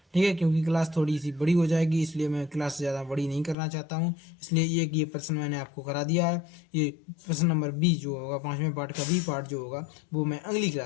ठीक है, क्योंकि क्लास थोड़ी सी बड़ी हो जाएगी, इसलिए मैं क्लास ज़्यादा बड़ी नहीं करना चाहता हूँ, इसलिए ये प्रश्न मैंने आपको करा दिया है। ये प्रश्न नंबर बी जो होगा, 5वें पार्ट का बी पार्ट जो होगा वो मैं अगली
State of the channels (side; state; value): right; drops out; at 3.6 s